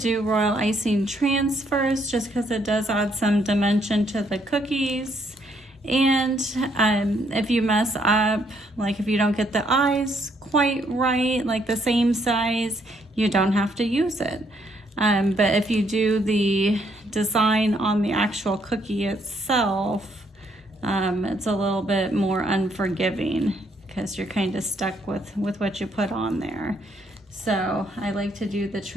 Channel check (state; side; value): normal; both; correlation 0.71